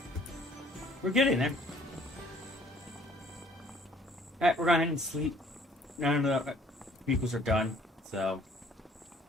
We're getting there. Alright, we're going ahead and sleep. None of the vehicles are done, so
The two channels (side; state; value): both; normal; correlation 0.58